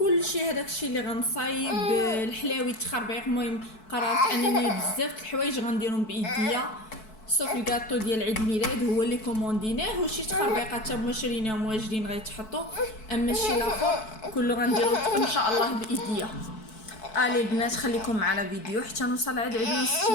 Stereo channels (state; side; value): late; right; 4.6 ms